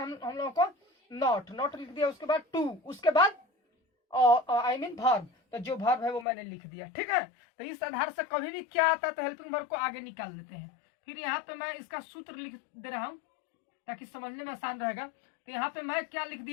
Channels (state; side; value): drops out; right; at 6.2 s